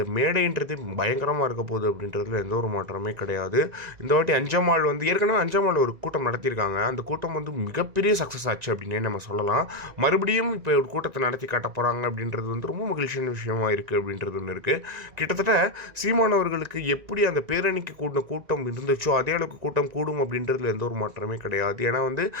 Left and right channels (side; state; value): left; late; 1.9 ms